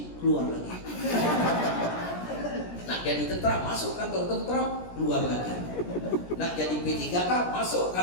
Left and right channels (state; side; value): late; right; 17 ms